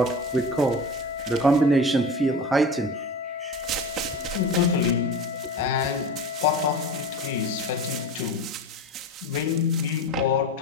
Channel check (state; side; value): normal; both; correlation 0.31